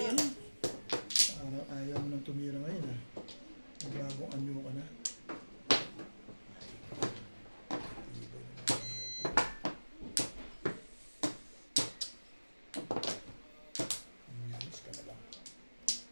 na. Ayaw mo nang tumira ngayon ha. Magbagong anyo ka na. Umilis ka na lang.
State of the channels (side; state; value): both; inverted; correlation -1.00